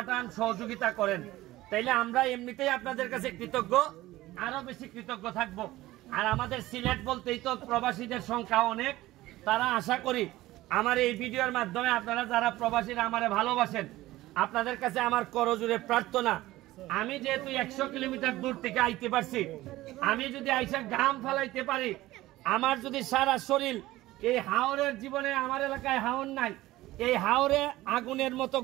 সহযোগিতা করেন, তাইলে আমরা এমনিতেই আপনাদের কাছে কৃতজ্ঞ, আরো বেশি কৃতজ্ঞ থাকবো। আর আমাদের সিলেট বলতেই তো প্রবাসীদের সংখ্যা অনেক। তারা আশা করি আমার এই ভিডিওর মাধ্যমে আপনারা যারা প্রবাসীরা আমারে ভালোবাসেন, আপনাদের কাছে আমার করজোড়ে প্রার্থনা, আমি যেহেতু 100 কিলোমিটার দূর থেকে আইতে পারছি, আমি যদি আইসা ঘাম ফেলাইতে পারি, আমার যদি সারা শরীর, এই হাওরের জীবনে আমার এলাকায় হাওর নাই, এই হাওরে আগুনের মতো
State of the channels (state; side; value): quieter; left; 17.1 dB